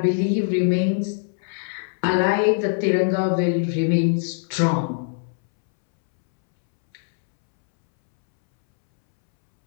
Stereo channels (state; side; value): silent; right; 64 dB below the other